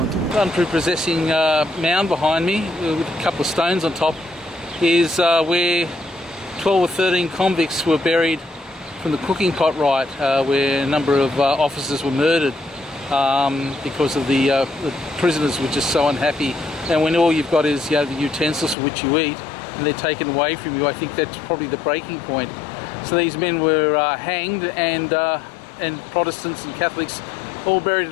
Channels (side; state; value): right; drops out; at 18.8 s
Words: The unprepossessing mound behind me with a couple of stones on top is where 12 or 13 convicts were buried from the cooking pot right, where a number of officers were murdered because of the prisoners were just so unhappy. And when all you've got is the utensils for which you eat, and they're taken away from you, I think that's probably the breaking point. So these men were hanged, and Protestants and Catholics all buried